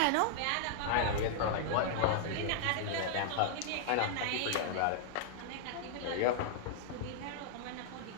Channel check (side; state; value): both; different; correlation -0.01